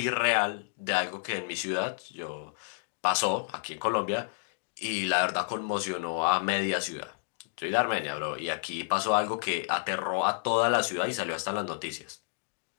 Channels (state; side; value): silent; right; digital silence